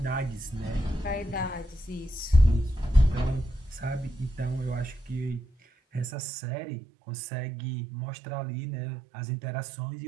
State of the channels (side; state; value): left; drops out; at 6.1 s